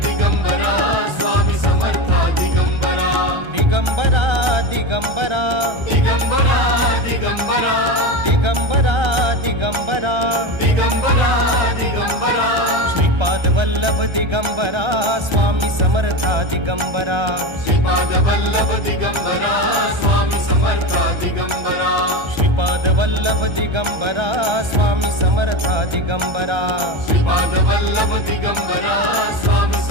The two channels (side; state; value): left; late; 1.3 ms